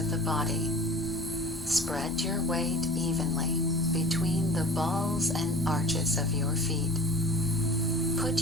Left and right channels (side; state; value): both; normal; correlation 0.41